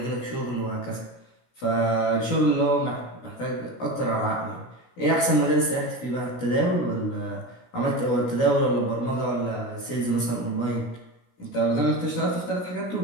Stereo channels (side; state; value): right; late; 16 ms